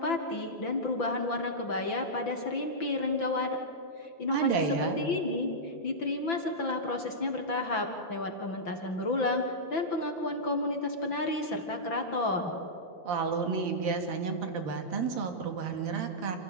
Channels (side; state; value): right; late; 5.9 ms